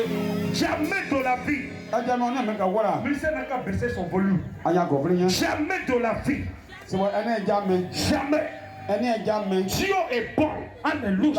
Jamais de la vie. Monsieur n'a qu'à baisser son volume. Jamais de la vie. Jamais. Dieu est bon.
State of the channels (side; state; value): both; identical; correlation 1.00